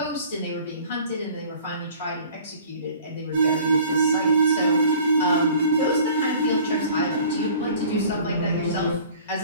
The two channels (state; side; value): inverted; both; correlation -0.49